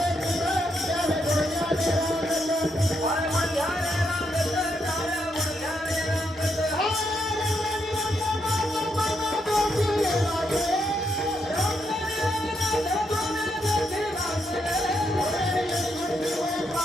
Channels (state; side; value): normal; both; correlation 0.79